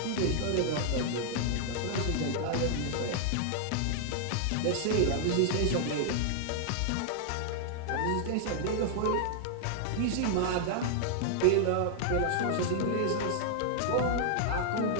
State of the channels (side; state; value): both; different; correlation -0.01